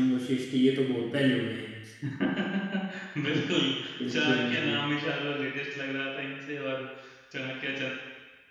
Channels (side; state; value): both; identical; correlation 1.00